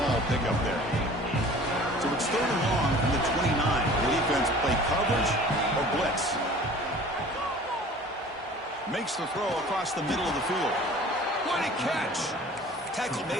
pickup there. So it's 3rd and long from the 29. The defense play coverage or blitz. Makes the throw across the middle of the field. What a catch! Tackle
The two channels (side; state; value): both; normal; correlation 0.46